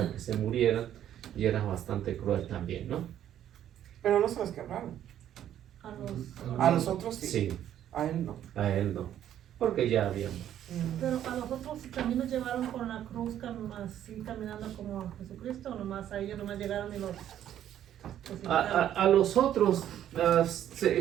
que se murieran, y era bastante cruel también, ¿no? Pero no se los quebraron. A A los otros sí. Sí, A él no. a él no, porque ya habíamos. Pero a nosotros también nos llevaron con la cruz así caminando como a Jesucristo, o nomás a ellos nomás llegaron y los A los otros,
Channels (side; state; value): left; quieter; 11.0 dB